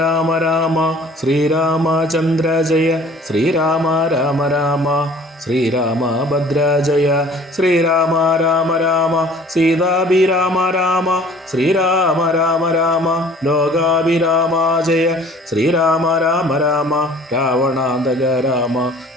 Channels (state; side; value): normal; both; correlation 0.50